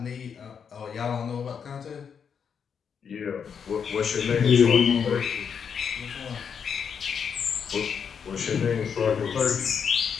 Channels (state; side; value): quieter; right; 7.0 dB